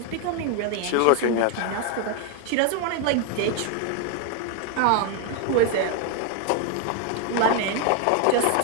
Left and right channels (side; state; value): both; different; correlation 0.01